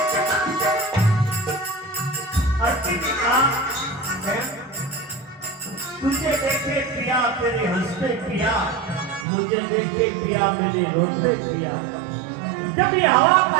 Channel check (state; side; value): drops out; left; at 9.2 s